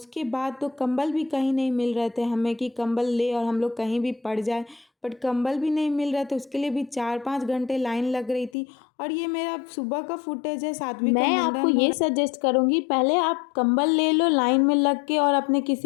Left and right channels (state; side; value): drops out; right; at 8.5 s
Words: बाद तो कंबल भी कहीं नहीं मिल रहे थे हमें कि कंबल ले और हम लोग कहीं भी पड़ जाए, बट कंबल भी नहीं मिल रहे थे। उसके लिए भी 4-5 घंटे लाइन लग रही थी। और ये मेरा सुबह का फुटेज है, सात्विक मैं आपको ये सजेस्ट करूँगी, पहले आप कंबल ले लो लाइन में लग के, और अपने